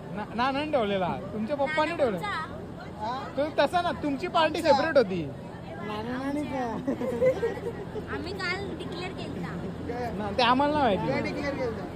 ना ठेवलेला तुमच्या पप्पानी ठेवला तो तसा ना तुमची पार्टी सेपरेट होती ते आम्हाला नाही माहिती.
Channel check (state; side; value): identical; both; correlation 1.00